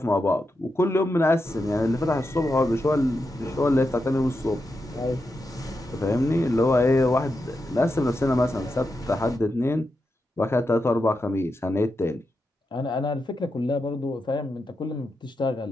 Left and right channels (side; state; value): both; normal; correlation 0.87